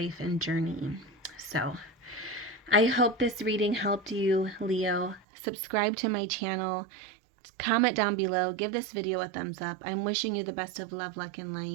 and journey. So I hope this reading helped you, Leo. Subscribe to my channel. Comment down below. Give this video a thumbs up. I'm wishing you the best of love, luck, and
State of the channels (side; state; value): left; drops out; at 5.2 s